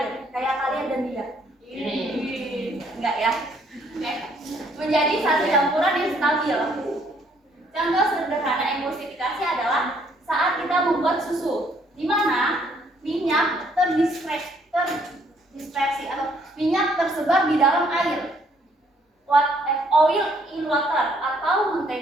kayak kalian dan dia. Enggak ya? Menjadi satu campuran yang stabil. Contoh sederhana emulsifikasi adalah saat kita membuat susu, di mana minyak terdispersi atau minyak tersebar di dalam air. Oil in water atau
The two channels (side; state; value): both; normal; correlation 0.66